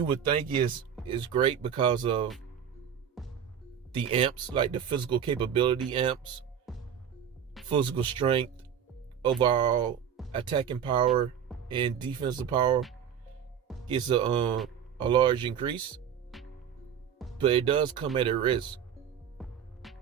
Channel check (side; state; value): left; quieter; 8.4 dB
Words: would think is great because of the amps, like the physical capability amps, physical strength, overall attacking power, and defensive power gets a large increase, but it does come at a risk.